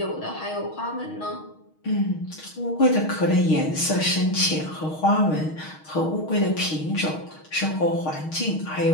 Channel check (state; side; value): late; right; 6.4 ms